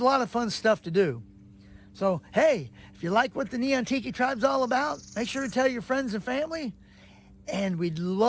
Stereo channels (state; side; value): identical; both; correlation 1.00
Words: a lot of fun stuff to do. So, hey, if you like what the Neon Tiki Tribe's all about, make sure to tell your friends and family. And we'd